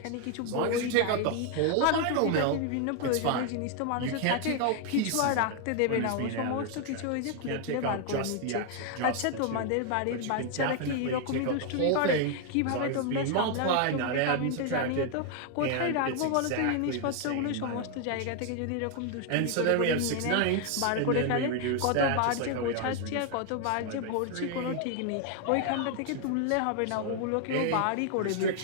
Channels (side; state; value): both; different; correlation 0.00